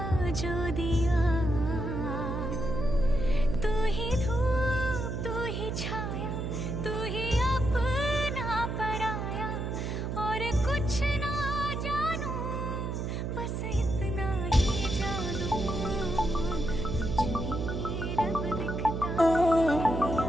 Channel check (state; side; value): noise; right; hum, 3 dB below the sound